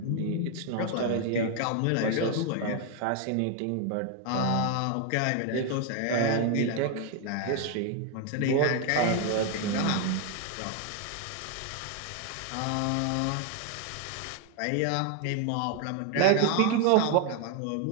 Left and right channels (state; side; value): different; both; correlation 0.01